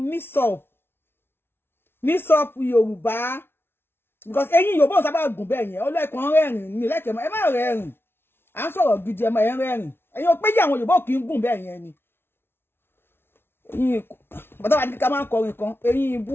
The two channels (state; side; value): late; right; 0.11 ms